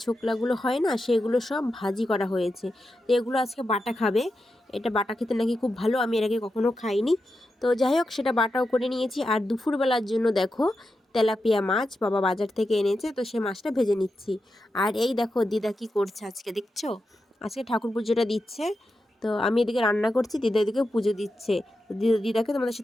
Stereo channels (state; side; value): normal; both; correlation 0.89